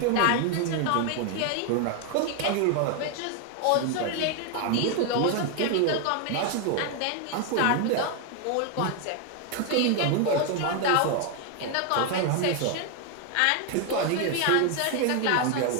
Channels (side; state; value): both; different; correlation 0.01